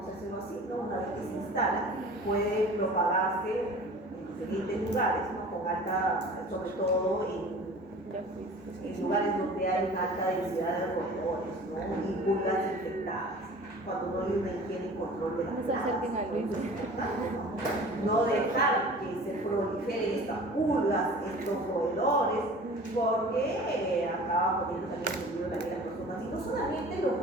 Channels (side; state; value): both; normal; correlation 0.43